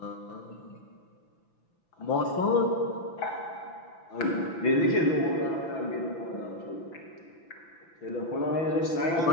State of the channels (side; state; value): right; late; 5.9 ms